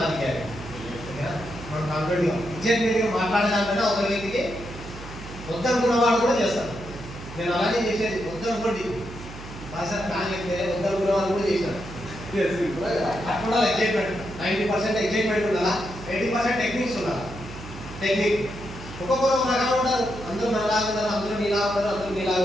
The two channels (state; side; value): noise; right; hum, 13 dB below the sound